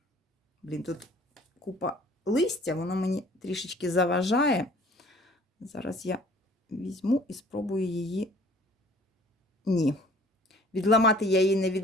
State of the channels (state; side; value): normal; both; correlation 0.53